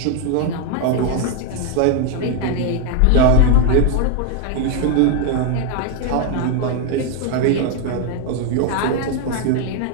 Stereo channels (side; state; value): both; different; correlation 0.01